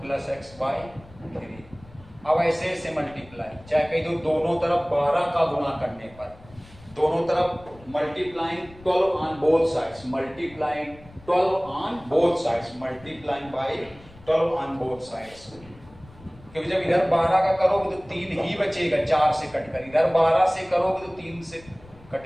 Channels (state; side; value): noise; left; rumble, 22 dB below the sound